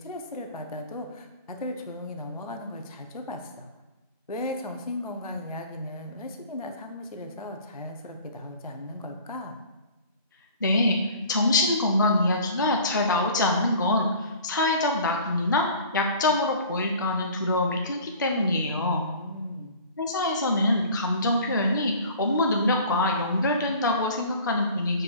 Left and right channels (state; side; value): inverted; both; correlation -0.44